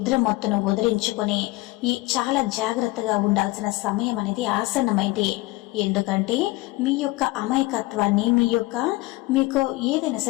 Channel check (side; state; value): right; quieter; 20.9 dB